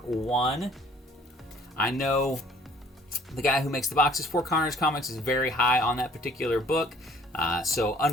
I know The guy who makes the boxes for Carnage Comix is very high on that particular book. So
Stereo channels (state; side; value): normal; both; correlation 0.56